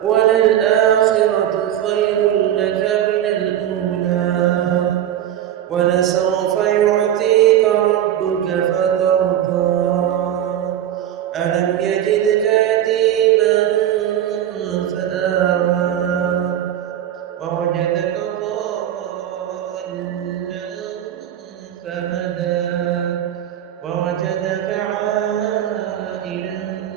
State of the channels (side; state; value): left; quieter; 11.1 dB